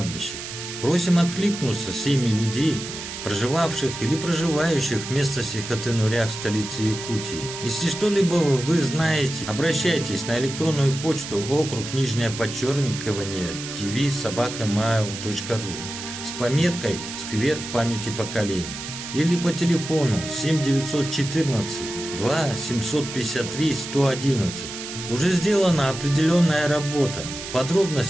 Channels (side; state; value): right; noise; hiss, 9 dB below the sound